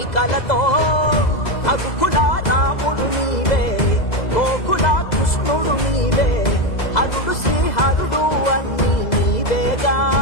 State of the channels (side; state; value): right; late; 2.0 ms